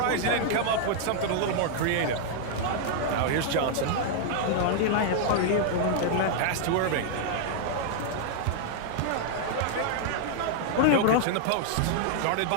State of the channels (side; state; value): both; different; correlation -0.01